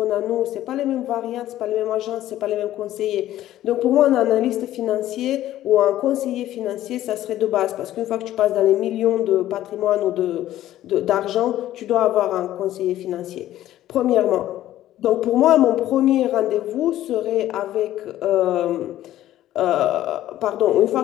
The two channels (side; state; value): right; quieter; 13.5 dB